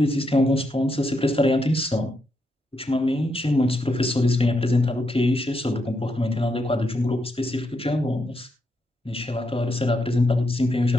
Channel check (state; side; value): normal; both; correlation 0.81